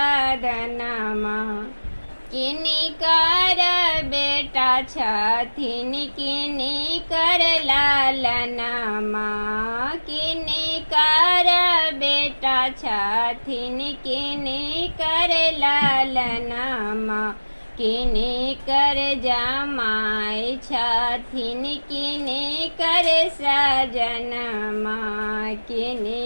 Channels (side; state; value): both; inverted; correlation -1.00